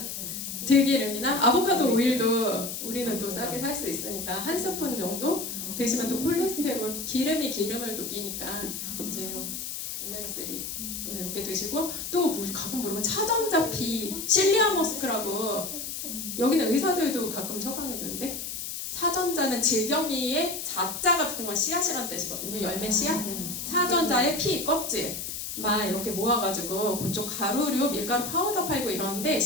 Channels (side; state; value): left; noise; hiss, 6 dB below the sound